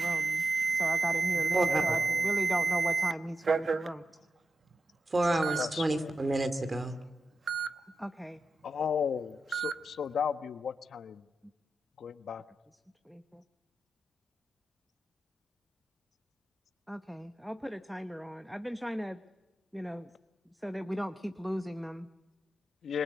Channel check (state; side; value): normal; both; correlation 0.90